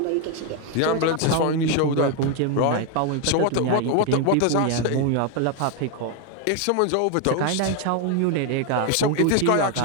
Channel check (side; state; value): both; different; correlation 0.01